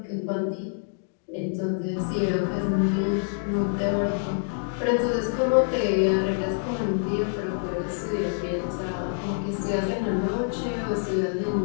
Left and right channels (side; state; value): right; silent; digital silence